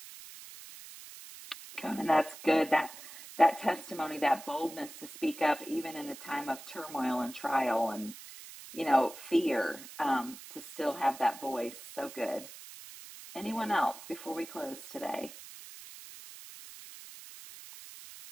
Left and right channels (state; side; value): noise; right; hiss, 15 dB below the sound